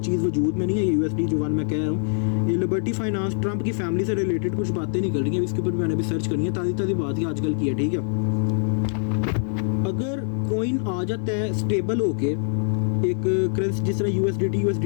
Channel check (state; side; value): silent; right; digital silence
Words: चीज़ वजूद में नहीं है, USD जो 1 मैं कह रहा हूँ। ये लिबर्टी फाइनेंस ट्रंप की फैमिली से रिलेटेड कुछ बातें निकल रही हैं, इसके ऊपर मैंने भी सर्च करनी है, ताज़ी बात ही आजकल की है, ठीक है। अगर कॉइन आ जाता है स्टेबल होके, एक करेंसी जिस तरह USDT